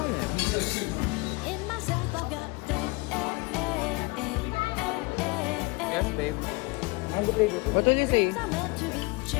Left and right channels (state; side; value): quieter; right; 26.4 dB